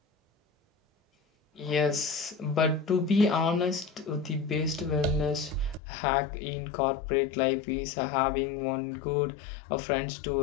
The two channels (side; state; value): right; drops out; at 5.8 s